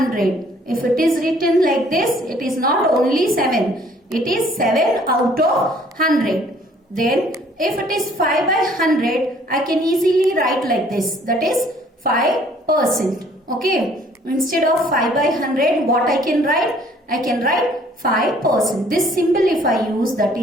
If it is written like this, it is not only 7. It is 7 out of 100. Then if it is 5 by 100, I can easily write like this. That is 5%. Okay. Instead of 5 by 100, what I can write? I can write 5%. This symbol if I use,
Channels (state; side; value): normal; both; correlation 0.58